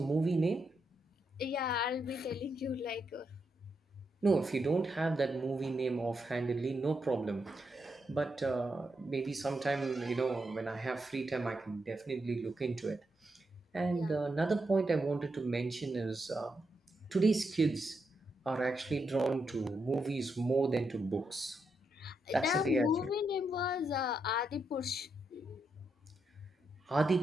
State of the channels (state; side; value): normal; both; correlation 0.82